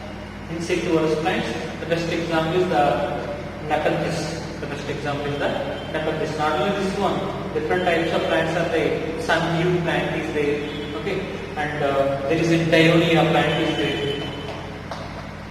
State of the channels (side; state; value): both; identical; correlation 1.00